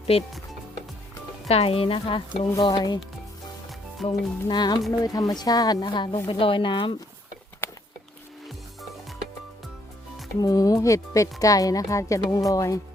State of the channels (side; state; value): both; normal; correlation 0.69